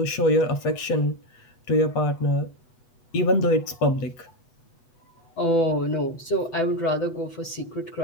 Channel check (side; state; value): right; late; 8.2 ms